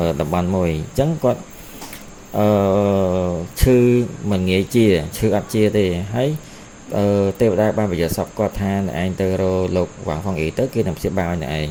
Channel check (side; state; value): both; identical; correlation 1.00